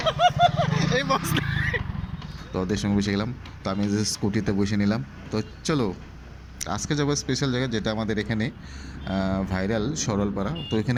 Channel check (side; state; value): both; identical; correlation 1.00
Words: এই বস, তো ওদের সঙ্গে বসে গেলাম। তো আমি যে স্কুটিতে বসে নিলাম। তো চলো আজকে যাবো স্পেশাল জায়গা, যেটা আমাদের এখানে ভাইরাল সরলপাড়া। তো